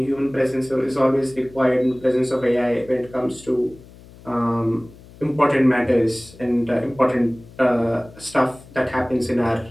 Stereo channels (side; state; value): left; noise; hum, 21 dB below the sound